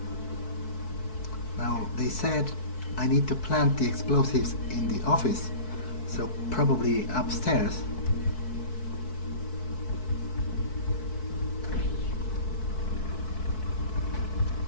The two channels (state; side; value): late; right; 4.6 ms